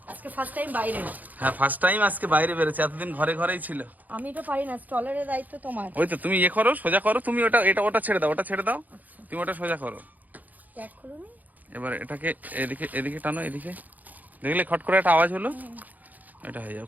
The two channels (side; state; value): left; late; 0.081 ms